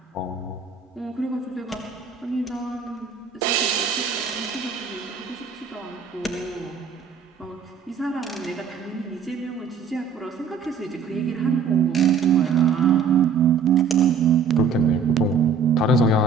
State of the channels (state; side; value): quieter; left; 5.6 dB